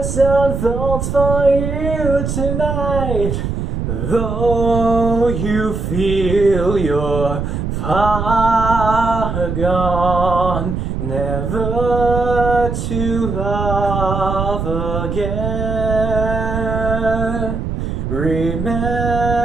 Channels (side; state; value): right; noise; rumble, 3 dB below the sound